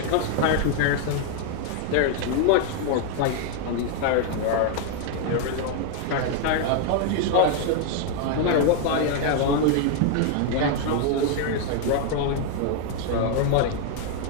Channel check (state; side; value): different; both; correlation 0.00